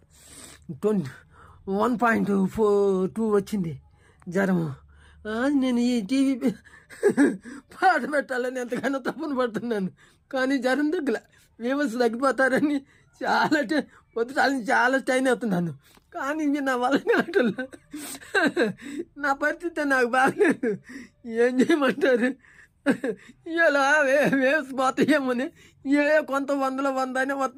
వచ్చింది జ్వరము. నేను ఈ టీవీ పాట పెట్టాలని ఎంతగానో తప్పును పడుతున్నాను, కానీ జ్వరం తగ్గల. వ్యూవర్స్ తగ్గిపోతారని పొద్దుటాల నుంచి చాలా స్టైన్ అవుతున్నాను, కానీ ఇవి నా వల్ల కావట్లేదు. నా పరిస్థితి నాకు బాగలేదు. ఏం చేయమంటారు? ఇలా వేవ్స్ పోతాయేమని, కొంత 100 అయినా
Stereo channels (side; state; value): both; identical; correlation 1.00